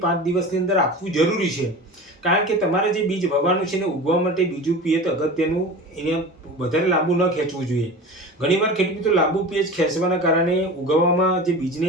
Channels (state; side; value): normal; both; correlation 0.33